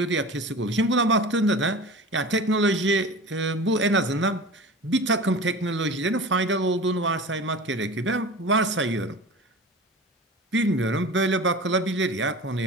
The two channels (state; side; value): normal; both; correlation 0.35